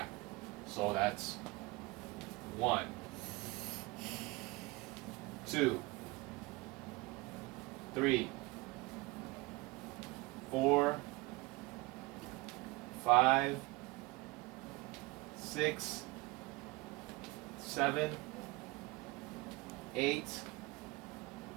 So that's 1, 2, 3, 4, 5, 6, 7, 8,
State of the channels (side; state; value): left; quieter; 23.2 dB